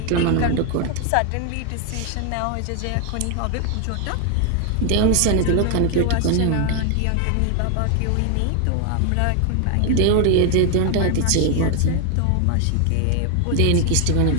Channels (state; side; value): different; both; correlation 0.01